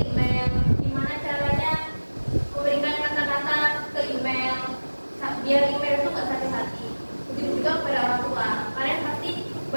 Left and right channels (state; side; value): inverted; both; correlation -1.00